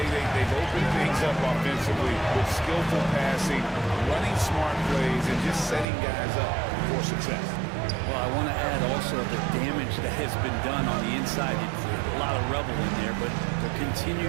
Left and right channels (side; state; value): left; drops out; at 5.9 s